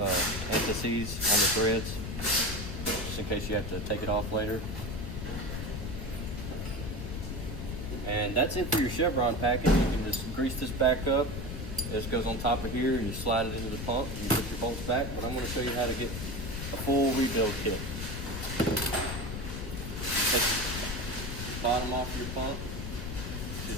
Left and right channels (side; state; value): left; noise; rumble, 5 dB below the sound